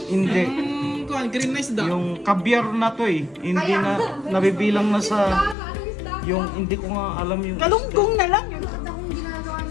Hindi. Kuhan, green na isda. Yung caviar na to eh. Hindi na nabibilang na sa... Anong isda? Yung hindi ko nga alam yung... Galunggong na lang. Bakit akong ginagawa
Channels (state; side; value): drops out; right; at 5.6 s